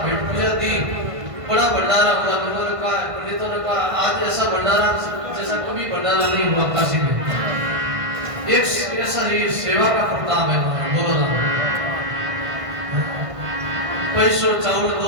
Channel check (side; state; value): left; late; 1.5 ms